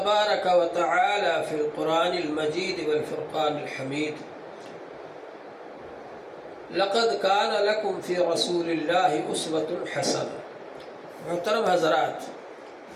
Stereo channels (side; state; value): both; identical; correlation 1.00